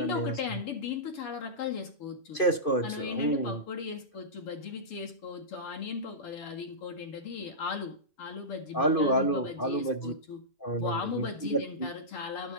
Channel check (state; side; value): late; right; 2.5 ms